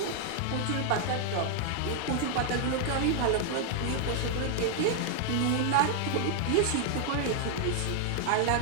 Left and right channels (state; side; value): different; both; correlation 0.00